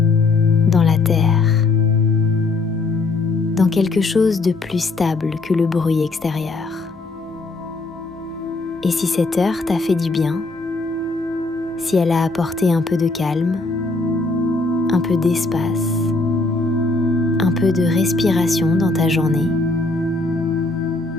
dans la terre, dans quelque chose de plus stable que le bruit extérieur. Et si cette heure t'a fait du bien, si elle a apporté un peu de calme, un peu d'espace, un peu de respiration dans ta journée,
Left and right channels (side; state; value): right; quieter; 3.4 dB